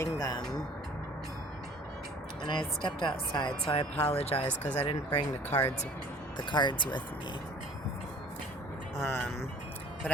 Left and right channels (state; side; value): normal; both; correlation 0.50